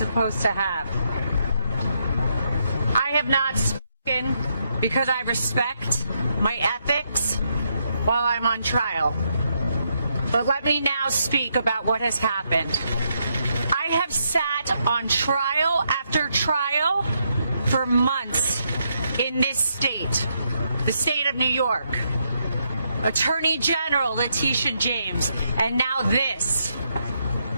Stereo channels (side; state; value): both; inverted; correlation -0.78